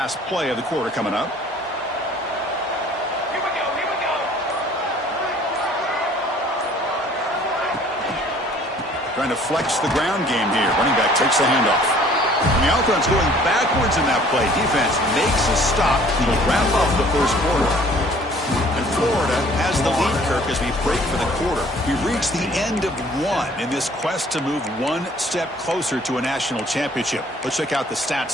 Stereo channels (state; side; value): normal; both; correlation 0.54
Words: play of the quarter coming up. Here we go, here we go. Trying to flex the ground game here. Running back takes the handoff. And the offense going backwards in that play. Defense makes a stop to wrap up the 1st quarter. And Florida has the lead, Kirk, as we break for the quarter. We reach the end of 1 in this quest to move 1 step closer to a national championship. Let's check out the stats